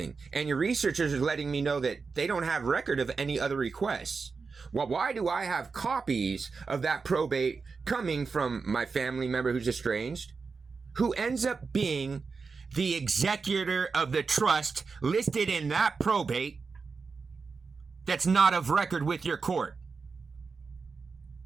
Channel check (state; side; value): quieter; left; 4.8 dB